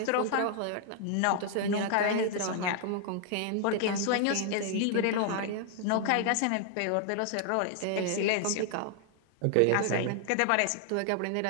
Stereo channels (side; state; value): both; different; correlation 0.00